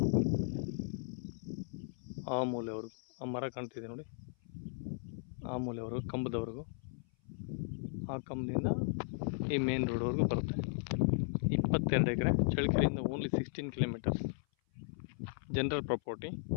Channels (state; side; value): silent; right; 54 dB below the other